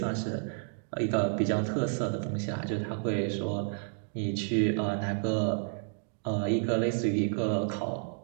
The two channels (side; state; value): left; silent; digital silence